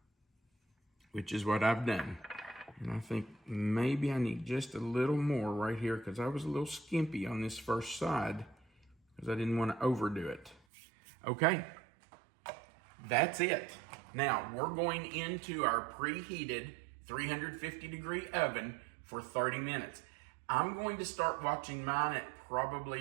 which is what I've done. And I think maybe I need just a little more right here, because I was a little skimpy on this first side because I didn't want to overdo it. Okay, that's it. Now, we're going into our preheated 350-degree oven for 30 minutes. I'm going to start watching mine at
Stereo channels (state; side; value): drops out; left; at 10.6 s